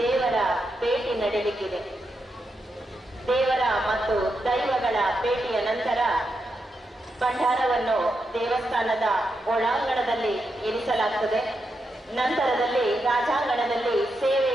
ದೇವರ ಭೇಟಿ ನಡೆಯಲಿಕ್ಕಿದೆ. ದೇವರ ಮತ್ತು ದೈವಗಳ ಭೇಟಿಯ ನಂತರ ಭಂಡಾರವನ್ನು ದೇವಸ್ಥಾನದ ಒಳಾಂಗಣದಲ್ಲಿ ಇರಿಸಲಾಗುತ್ತದೆ. ನಂತರದಲ್ಲಿ ರಾಜಾಂಗಣದಲ್ಲಿ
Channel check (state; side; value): normal; both; correlation 0.85